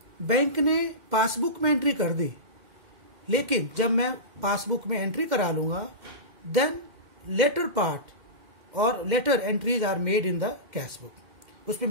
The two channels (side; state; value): left; late; 2.1 ms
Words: bank ने passbook में entry कर दी, लेकिन जब मैं पासबुक में एंट्री करा लूंगा देन लेटर पार्ट और later entries are made in the cash book. उसमें